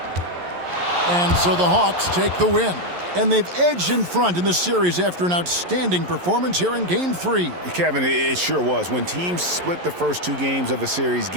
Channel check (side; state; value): left; late; 11 ms